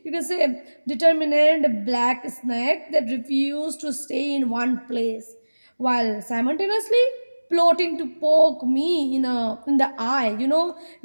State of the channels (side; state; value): both; inverted; correlation -1.00